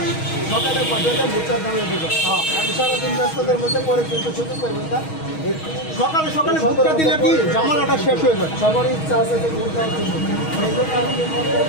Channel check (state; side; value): late; right; 6.3 ms